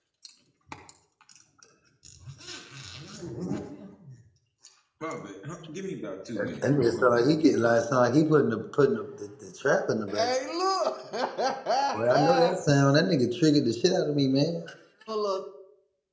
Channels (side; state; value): both; identical; correlation 1.00